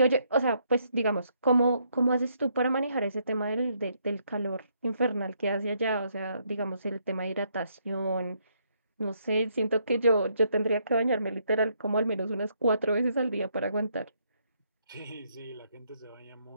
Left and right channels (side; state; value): both; inverted; correlation -0.73